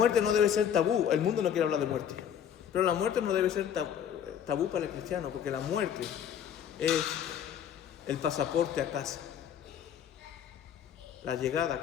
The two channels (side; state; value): right; quieter; 9.1 dB